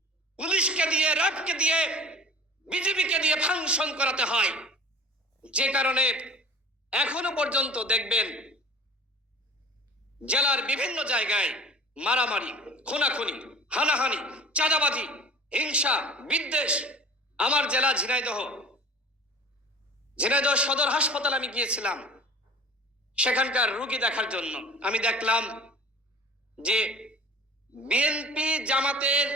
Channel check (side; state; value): both; normal; correlation 0.41